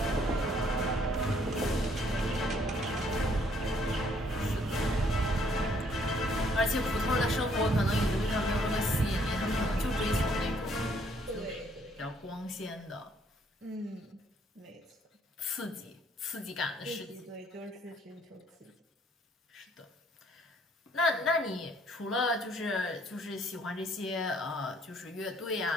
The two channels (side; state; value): both; normal; correlation 0.65